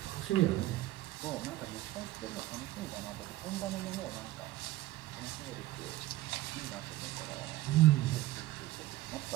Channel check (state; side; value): quieter; left; 16.5 dB